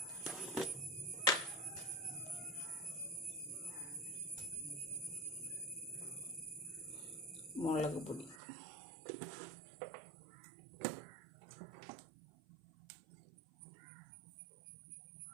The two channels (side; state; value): left; drops out; at 8.3 s